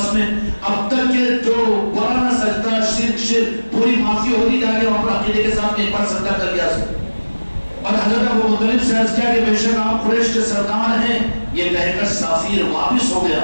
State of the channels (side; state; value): both; inverted; correlation -1.00